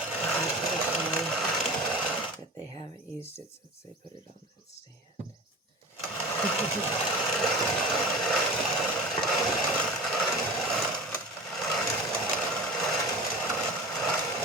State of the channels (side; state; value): both; normal; correlation 0.34